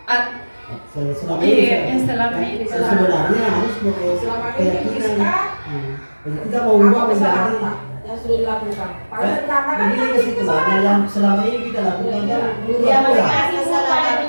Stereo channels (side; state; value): both; inverted; correlation -1.00